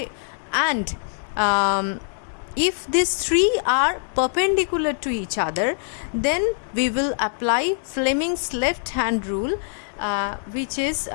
and if these three are perpendicular to each other, then we will apply Fleming's left hand rule, which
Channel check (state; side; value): silent; right; digital silence